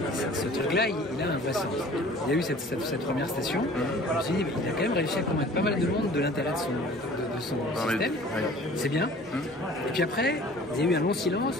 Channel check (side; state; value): both; normal; correlation 0.48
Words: ce truc-là, il a un vrai sens. Il y a eu cette première station, je me suis dit, il a quand même réussi à convaincre pas mal de monde de l'intérêt de son système. C'est bien. Et puis après, il y a eu un long